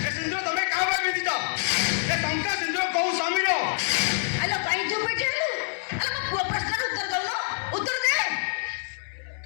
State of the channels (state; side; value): silent; right; digital silence